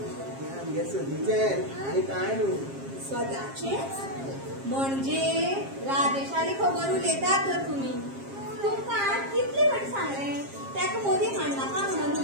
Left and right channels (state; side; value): late; left; 7.4 ms